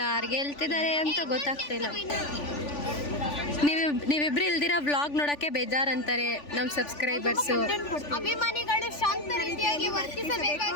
ಗೆಲ್ತಿದ್ದಾರೆ ಅಂತ ಗೊತ್ತಾಗ್ತಿಲ್ಲ. ನೀವಿಬ್ರು ಇಲ್ದಿರ ವ್ಲಾಗ್ ನೋಡಕ್ಕೆ ಬೇಜಾರಂತಾರೆ ನಮ್ಮ ಸಬ್ಸ್ಕ್ರೈಬರ್ಸು. ಅಭಿಮಾನಿಗಳು ಶಾಂತ ರೀತಿಯಾಗಿ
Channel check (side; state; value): right; late; 3.4 ms